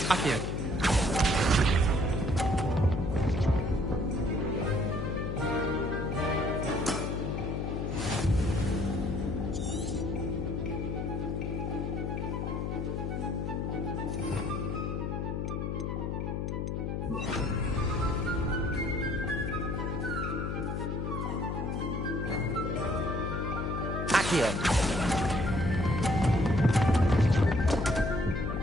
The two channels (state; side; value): noise; left; hum, 2 dB below the sound